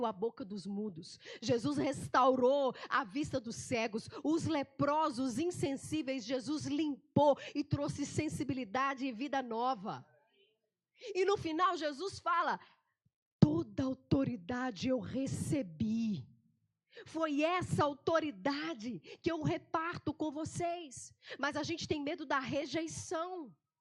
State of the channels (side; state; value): both; identical; correlation 1.00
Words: a boca dos mudos. Jesus restaurou a vista dos cegos. Os leprosos, insensíveis, Jesus limpou e trouxe sensibilidade e vida nova. E no final Jesus fala, toda autoridade eu recebi. Foi essa autoridade que eu reparto com vocês. Mas a gente tem medo da rejeição.